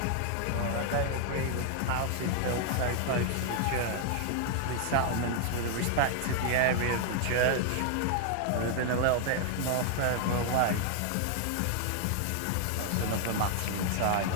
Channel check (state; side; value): different; both; correlation 0.00